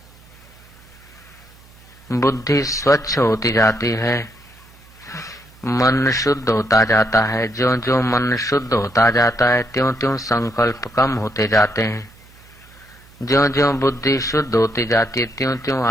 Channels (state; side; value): noise; right; hum, 25 dB below the sound